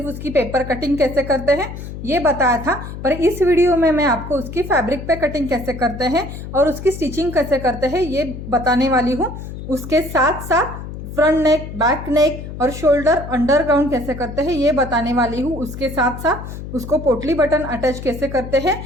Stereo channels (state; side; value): noise; left; hum, 10 dB below the sound